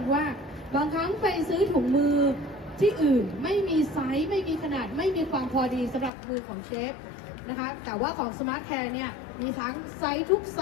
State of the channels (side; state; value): right; drops out; at 6.1 s